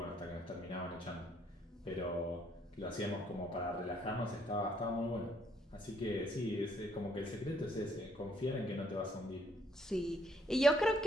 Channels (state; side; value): normal; both; correlation 0.68